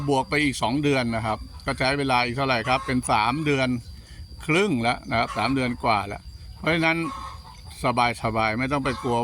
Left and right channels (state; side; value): identical; both; correlation 1.00